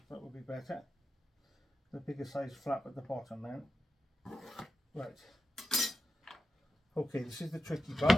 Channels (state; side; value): normal; both; correlation 0.90